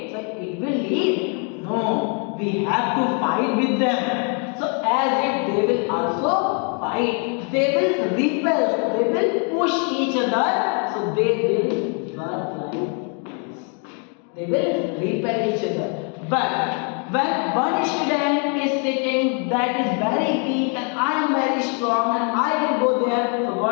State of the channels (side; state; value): right; quieter; 39.3 dB